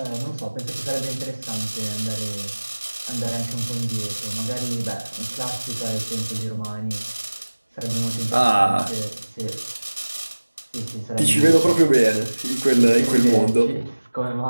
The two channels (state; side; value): inverted; both; correlation -1.00